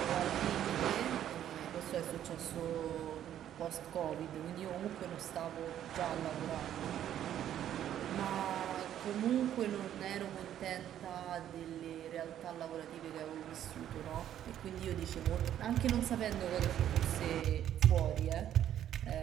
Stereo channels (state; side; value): quieter; left; 10.9 dB